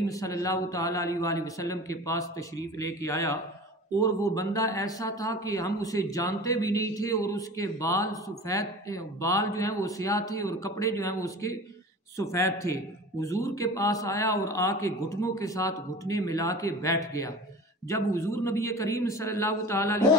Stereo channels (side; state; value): both; normal; correlation 0.37